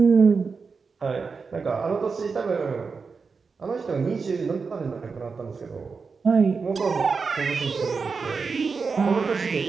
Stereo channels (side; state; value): left; quieter; 4.9 dB